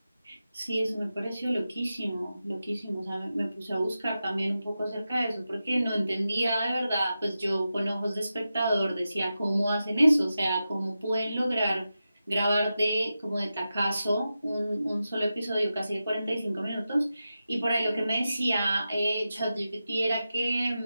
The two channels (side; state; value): both; inverted; correlation -0.91